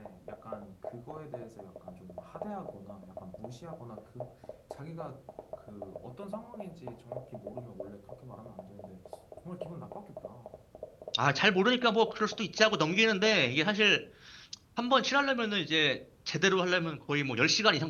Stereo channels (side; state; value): both; identical; correlation 1.00